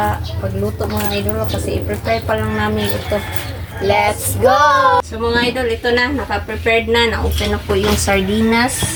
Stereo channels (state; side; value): identical; both; correlation 1.00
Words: pagluto mga idol kasi i-prepare pa lang namin ito. Let's go! So mga idol, ito na, naka-prepared na, na-open na po yung sardinas.